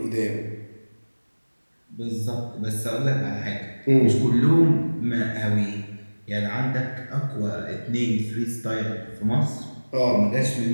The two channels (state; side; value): inverted; both; correlation -1.00